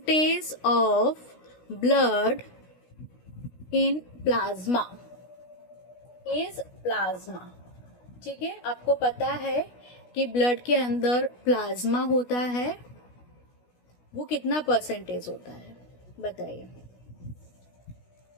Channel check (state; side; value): late; right; 16 ms